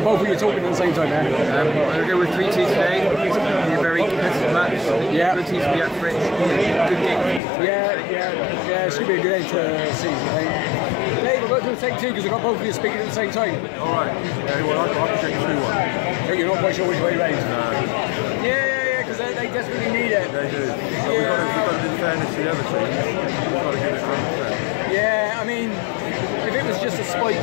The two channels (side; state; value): right; drops out; at 7.4 s